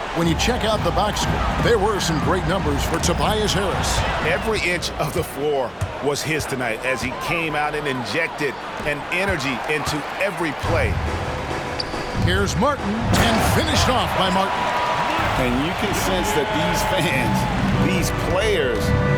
when you check out the box score, there were some great numbers for TOBAIS Harris. Every inch of the floor was his tonight as he came out and injected an energy into every play. Here's Martin, and finished off by Martin. And you can sense that these fans, these players,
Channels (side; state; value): both; identical; correlation 1.00